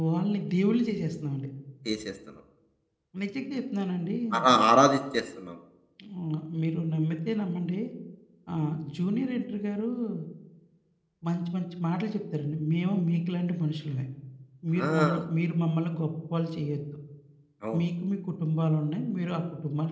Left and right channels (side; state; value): both; identical; correlation 1.00